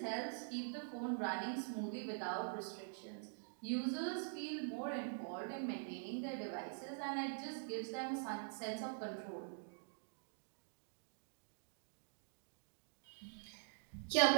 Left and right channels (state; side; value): silent; left; digital silence